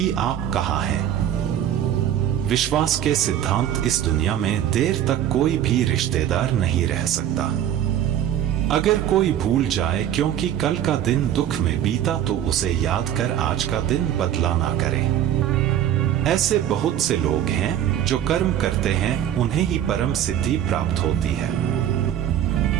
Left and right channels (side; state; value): left; quieter; 10.8 dB